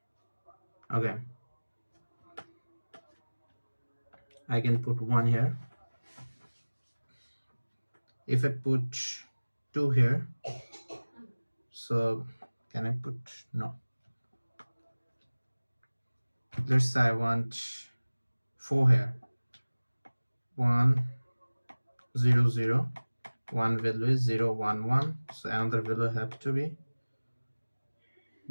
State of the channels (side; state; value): both; inverted; correlation -1.00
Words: Okay, I can put 1 here. If I put 2 here, so can I put, no, let's say I want 4 here, 1, 0, 0, 1 value is 0, 1, 1, so another value have to be